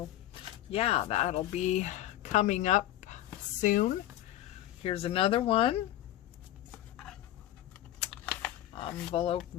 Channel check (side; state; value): right; quieter; 13.5 dB